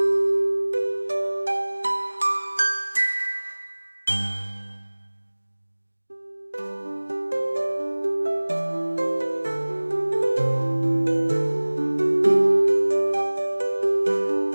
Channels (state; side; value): inverted; both; correlation -1.00